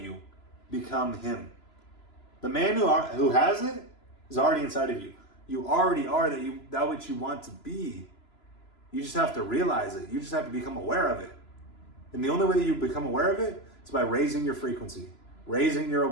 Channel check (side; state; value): right; late; 3.0 ms